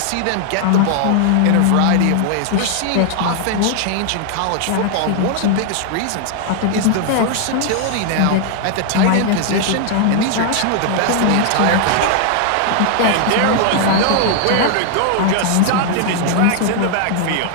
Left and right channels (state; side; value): different; both; correlation 0.00